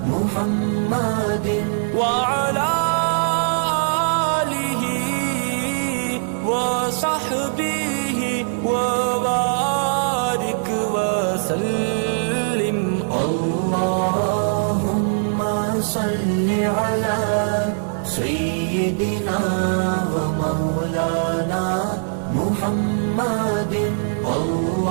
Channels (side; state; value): left; silent; 58 dB below the other